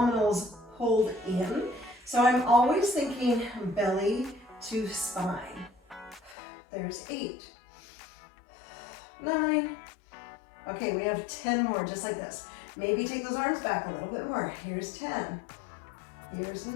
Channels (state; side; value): drops out; right; at 6.4 s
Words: pulled in. So I'm always thinking belly to spine. There's 8, 9. Okay, we have 10 more just like this. Maybe take those arms back a little bit more. Here's 10. Here's